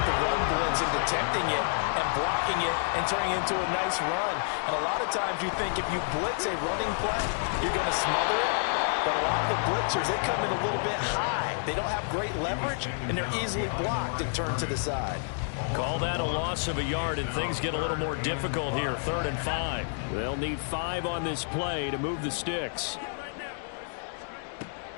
the run blitz and detecting it and blocking it and turning it into a nice run. And a lot of times you think if you blitz a running play, you're going to smother it. But a lot of the blitzers, they come in a little bit high. They don't have great leverage, and they're easily blocked and turned to the side. Call that a loss of a yard, and things get a little more difficult here. 3rd and 5. They'll need 5 on this play to move the sticks.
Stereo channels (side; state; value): right; silent; digital silence